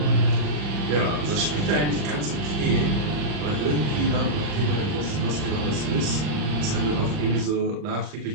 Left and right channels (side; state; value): left; late; 40 ms